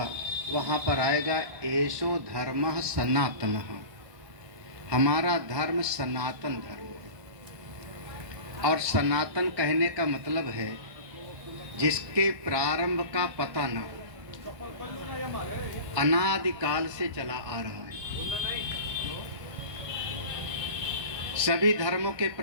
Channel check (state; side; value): late; left; 1.2 ms